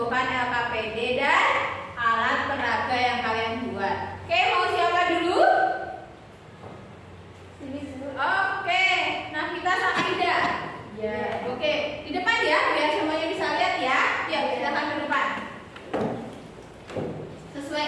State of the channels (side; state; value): both; identical; correlation 1.00